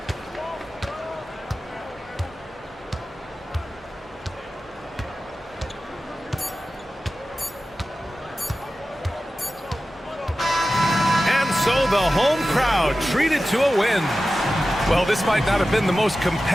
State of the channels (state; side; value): normal; both; correlation 0.94